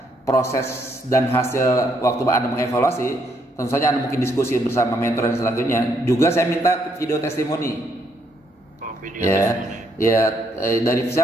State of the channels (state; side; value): normal; both; correlation 0.73